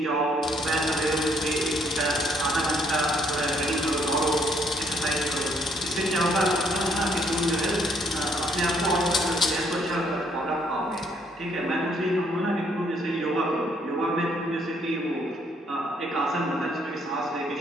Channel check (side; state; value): both; normal; correlation 0.68